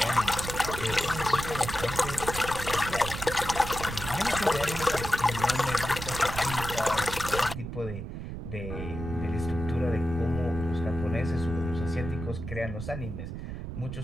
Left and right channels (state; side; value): noise; right; rumble, 7 dB below the sound